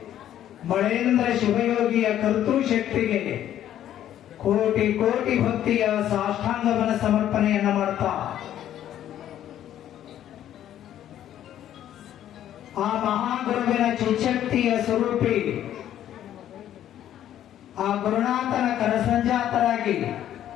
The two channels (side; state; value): right; quieter; 11.4 dB